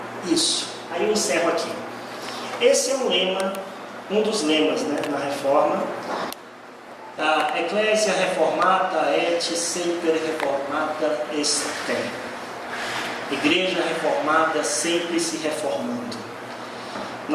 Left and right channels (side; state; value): both; identical; correlation 1.00